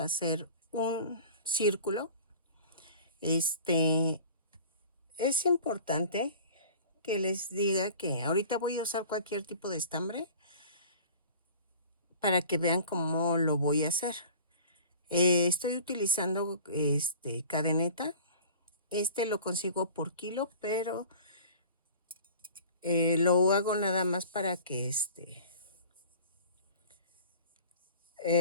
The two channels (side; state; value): both; inverted; correlation -0.44